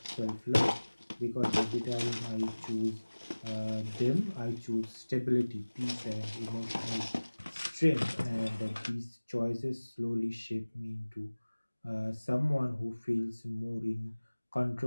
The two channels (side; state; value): both; inverted; correlation -1.00